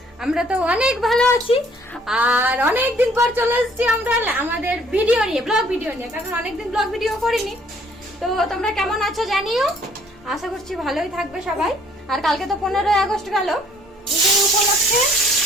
আমরা তো অনেক ভালো আছি। আর অনেকদিন পর চলে এসেছি আমরা আমাদের ভিডিও নিয়ে, ব্লগ ভিডিও নিয়ে, কারণ অনেকদিন ব্লগ ভিডিও করিনি। তো তোমরা কেমন আছো জানিও, আশা করছি ভালোই থাকবে সবাই। আর কালকে তো 15ই আগস্ট গেল, সেই উপলক্ষে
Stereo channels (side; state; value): both; normal; correlation 0.60